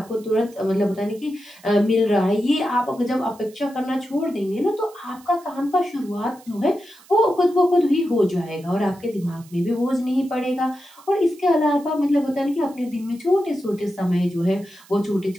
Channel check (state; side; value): noise; right; hiss, 25 dB below the sound